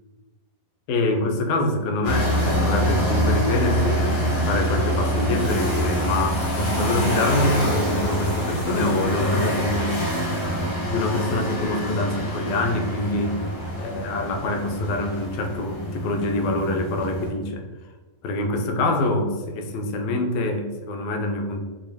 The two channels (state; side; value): late; right; 11 ms